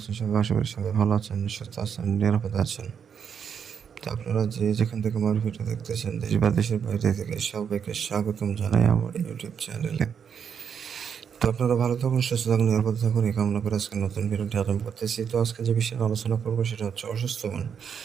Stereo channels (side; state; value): left; quieter; 7.3 dB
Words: সবাই? আশা করি সবাই ভালো আছেন, সুস্থ আছেন, নিরাপদে আছেন। তো আপনারা যে যেখান থেকে আমার ভিডিও দেখতেছেন, দেশ বা দেশের বাইরে থেকে, সবাইকে স্বাগতম জানাই আমার ইউটিউব চ্যানেলে। তো আপনারা ভালো থাকুন, সুস্থ থাকুন, নিরাপদে থাকুন, এই কামনা করে আজকে নতুন ভিডিওটি আরম্ভ করতেছি। তো আজকে যে বিষয়ে আলোচনা করবো সেটা হচ্ছে অসুস্থ বান।